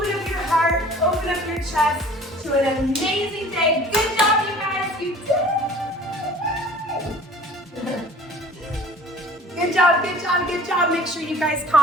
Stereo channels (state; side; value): normal; both; correlation 0.47